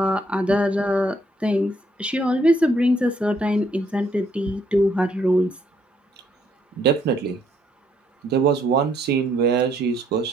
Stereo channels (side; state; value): both; normal; correlation 0.69